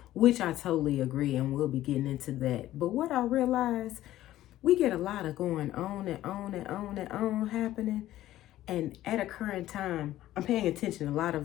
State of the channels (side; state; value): right; quieter; 14.2 dB